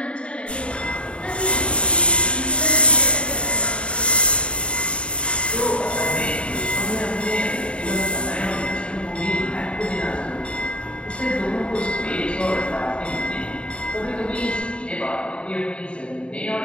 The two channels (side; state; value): right; late; 0.058 ms